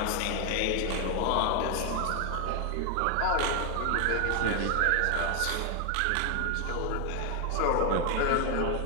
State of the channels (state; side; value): different; both; correlation 0.01